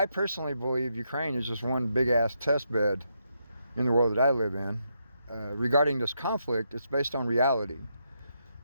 personally believe Ukraine is just one big-ass test bed in the world that I live in. Regarding this conflict, it's based on reality.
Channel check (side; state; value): both; inverted; correlation -0.80